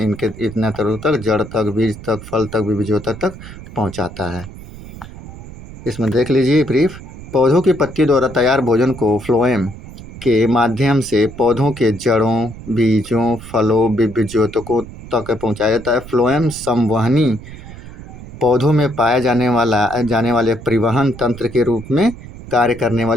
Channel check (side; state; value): right; noise; rumble, 15 dB below the sound